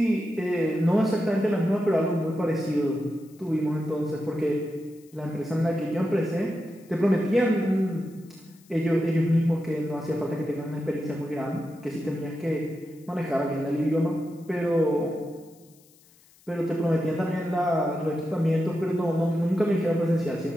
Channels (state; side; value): noise; left; hiss, 29 dB below the sound